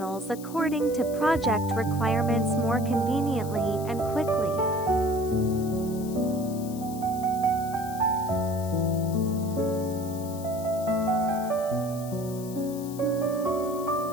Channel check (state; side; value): noise; left; hiss, 16 dB below the sound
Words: according to project requirements more conveniently and quickly.